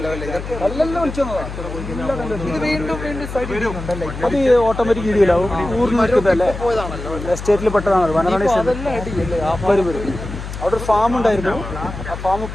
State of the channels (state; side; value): noise; left; hum, 9 dB below the sound